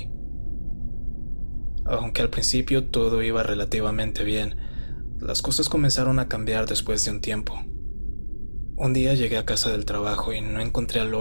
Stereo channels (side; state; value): both; inverted; correlation -1.00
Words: Aunque al principio todo iba relativamente bien, las cosas comenzaron a cambiar después de un tiempo. Un día llegué a casa del trabajo y no encontré a